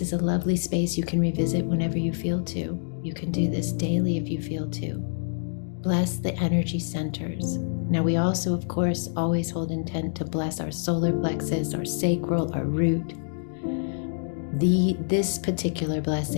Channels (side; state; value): right; silent; digital silence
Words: a lovely space you can revisit whenever you feel to. You can do this daily if you feel to. Bless the energy centers. Now we also, of course, always hold intent to bless our solar plexus, our sacral, our root. This particular